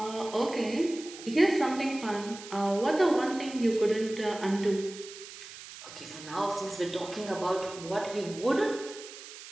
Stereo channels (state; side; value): noise; right; hiss, 14 dB below the sound